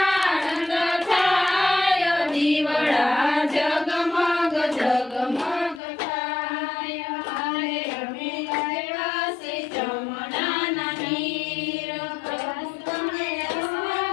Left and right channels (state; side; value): drops out; right; at 5.8 s